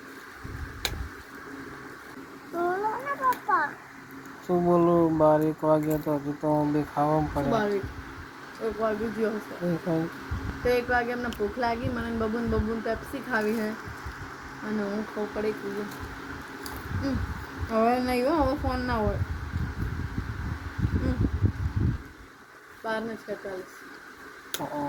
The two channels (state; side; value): identical; both; correlation 1.00